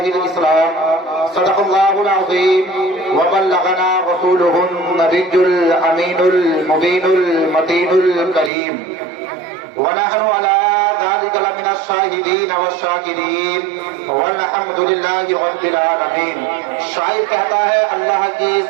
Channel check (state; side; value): drops out; left; at 8.5 s